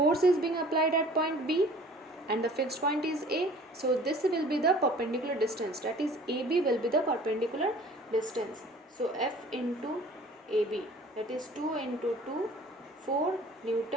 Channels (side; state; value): both; normal; correlation 0.49